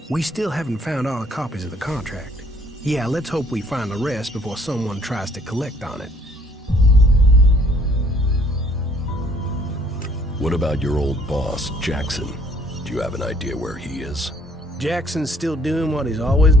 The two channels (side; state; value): both; normal; correlation 0.62